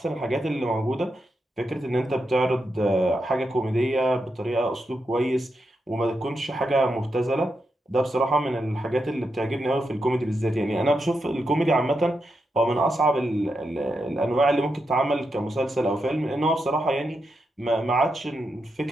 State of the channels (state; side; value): normal; both; correlation 0.85